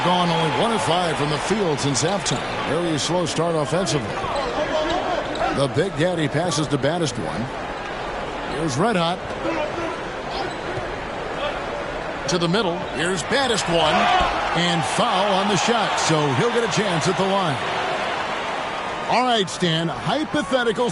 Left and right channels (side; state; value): both; identical; correlation 1.00